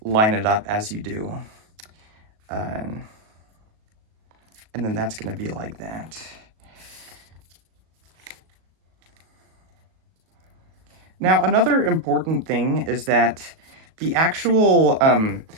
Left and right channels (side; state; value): left; late; 37 ms